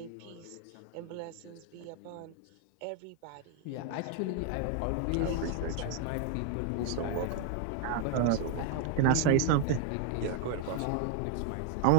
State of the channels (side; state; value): both; different; correlation 0.00